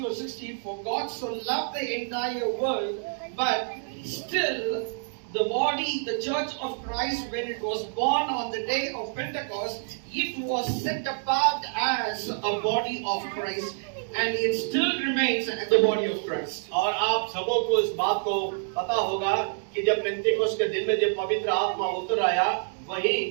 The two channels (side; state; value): left; silent; digital silence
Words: verse 16, for God so loved the entire world, but still the body, the church of Christ, when it was born on the day of Pentecost, it was set apart as a body of Christ, and it still remains the body of Christ. और आप सबों को इस बात को पता होगा कि जब पेंतेकोस्त के दिन में जब पवित्र आत्मा उतर आया, वही